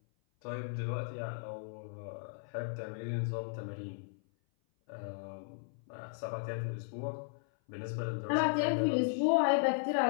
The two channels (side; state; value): right; silent; 54 dB below the other